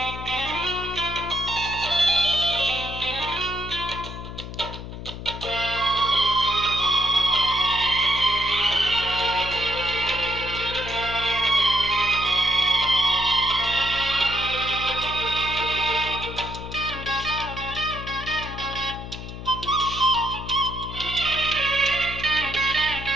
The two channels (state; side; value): noise; left; hum, 10 dB below the sound